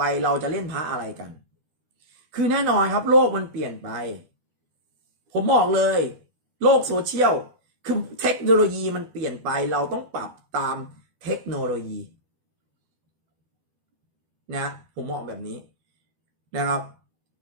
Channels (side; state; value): left; late; 12 ms